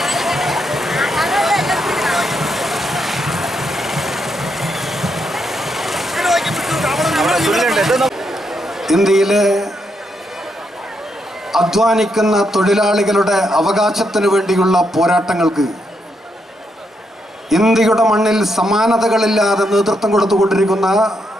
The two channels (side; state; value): both; normal; correlation 0.79